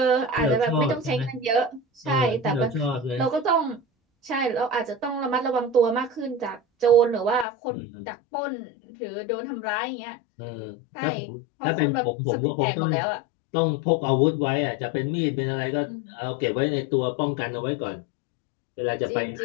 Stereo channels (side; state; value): right; drops out; at 7.5 s